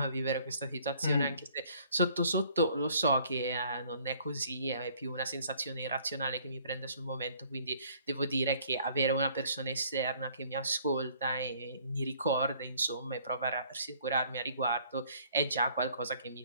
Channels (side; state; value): both; inverted; correlation -0.59